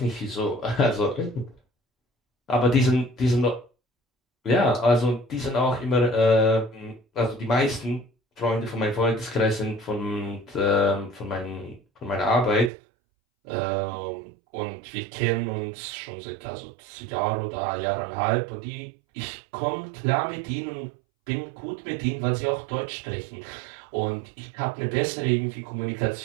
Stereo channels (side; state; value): left; drops out; at 12.7 s